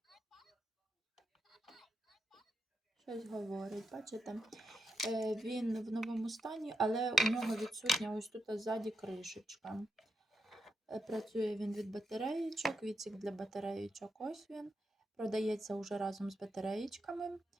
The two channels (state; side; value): normal; both; correlation 0.83